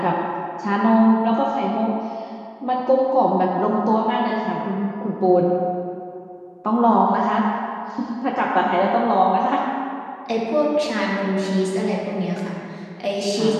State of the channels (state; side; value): identical; both; correlation 1.00